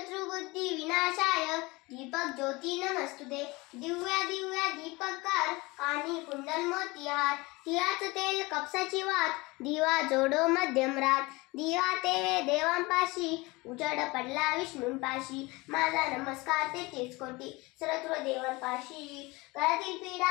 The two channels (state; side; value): quieter; right; 23.5 dB